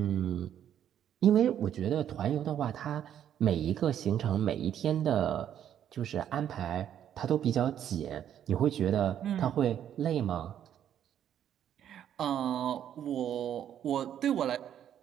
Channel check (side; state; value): left; quieter; 10.1 dB